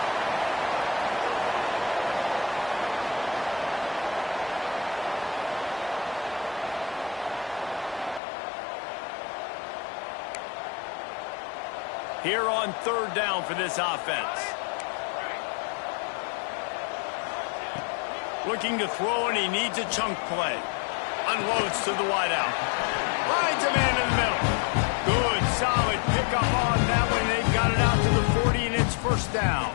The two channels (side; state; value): right; drops out; at 8.2 s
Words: Here on 3rd down for this offense. Looking to throw, and he needs a chunk play. Unloads to the wideout. Finds a man in the middle. Good, solid pickup on that one. They've got it out to the 40, and it's 1st down.